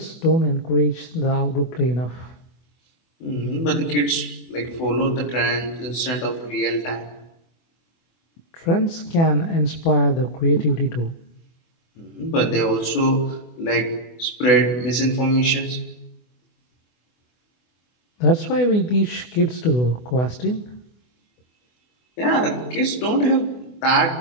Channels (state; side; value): late; right; 24 ms